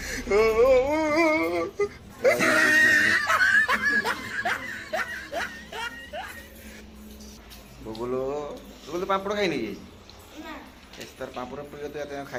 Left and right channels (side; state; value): both; identical; correlation 1.00